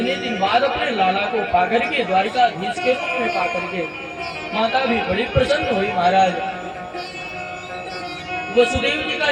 दिन बाद अपने लाला को पाकर के, द्वारिकाधीश के रूप में पाकर के माता भी बड़ी प्रसन्न हुई महाराज। वसुदेव जी का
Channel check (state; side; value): identical; both; correlation 1.00